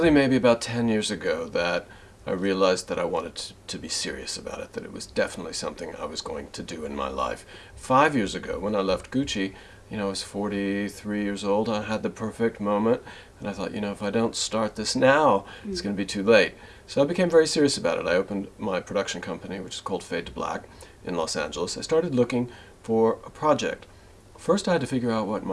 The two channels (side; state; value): both; identical; correlation 1.00